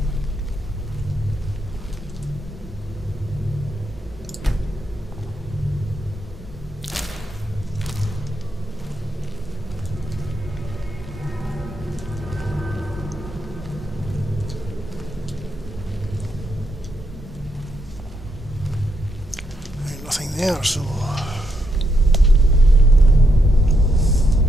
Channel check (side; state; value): both; normal; correlation 0.79